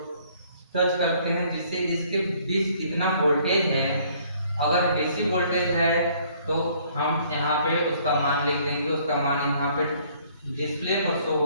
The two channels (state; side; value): inverted; both; correlation -0.61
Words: टच करते हैं, जिससे इसके बीच कितना वोल्टेज है। अगर डीसी वोल्टेज है तो हम यहाँ पे उसका मान लिख देंगे, उसका मान यहाँ पे डिस्प्ले पर शो